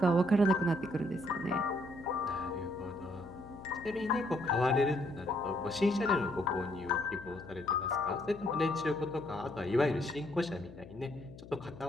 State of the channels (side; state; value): left; noise; hum, 17 dB below the sound